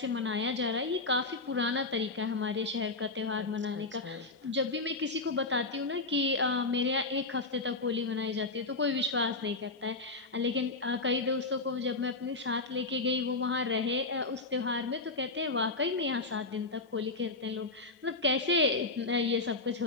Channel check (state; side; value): quieter; right; 3.4 dB